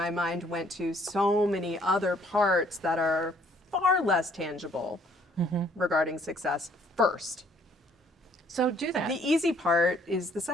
mind went to so many other parts that are far less tangible regarding success first. So do that. The easy part is the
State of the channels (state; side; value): normal; both; correlation 0.62